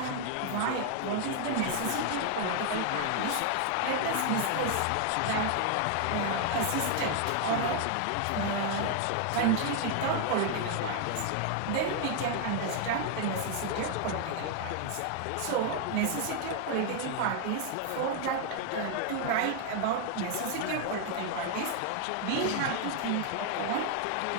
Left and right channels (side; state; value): both; different; correlation 0.00